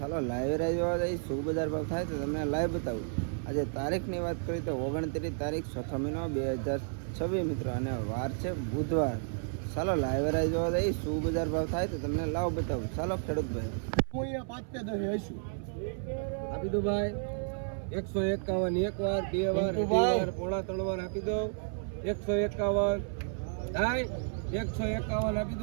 લાઈવ રાહ જોવા જઈએ. શું બજાર ભાવ થાય તો તમને લાઈવ બતાવું. આજે તારીખની વાત કરીએ તો 29 તારીખ 6 મહિનો 2026 મિત્રો, અને વાર છે બુધવાર. ચાલો લાઈવ રાહ જોવા જઈએ. શું બજાર ભાવ થાય તો તમને લાવ બતાવું. ચાલો ખેડૂત ભાઈ, હું અહીંયા 5 ને 10 હશું આપી દો ભાઈ. 151 એક વાર, બે વાર, અઢી વાર, પોણા 3 વાર આપી દો. 151 થાય. 151 આપી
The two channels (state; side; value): silent; left; 56 dB below the other